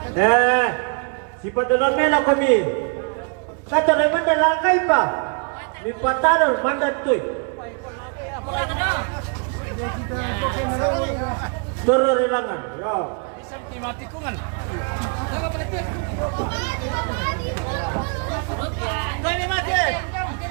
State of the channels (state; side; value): quieter; left; 38.3 dB